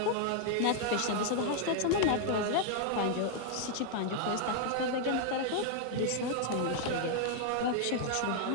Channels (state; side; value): different; both; correlation 0.00